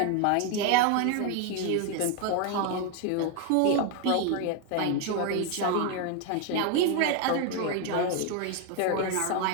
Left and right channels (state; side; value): different; both; correlation 0.01